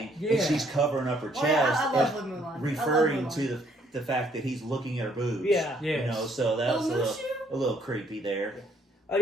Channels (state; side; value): normal; both; correlation 0.66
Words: Yeah. And she's covering up her chest. I love Mulan. Referring to the fact that he's looking at her boobs. Yeah. You know, so that was a little creepy there. Oh,